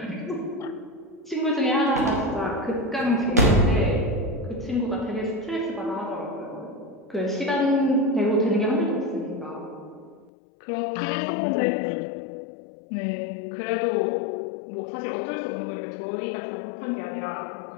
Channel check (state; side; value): drops out; right; at 10.3 s